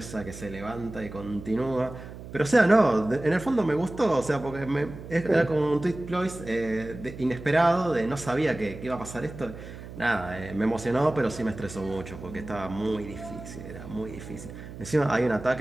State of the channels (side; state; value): right; noise; hum, 13 dB below the sound